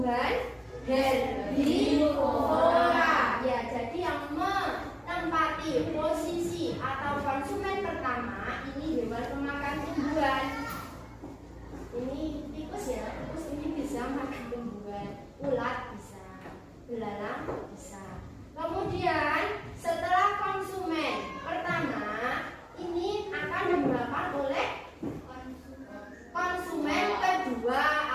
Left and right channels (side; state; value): both; identical; correlation 1.00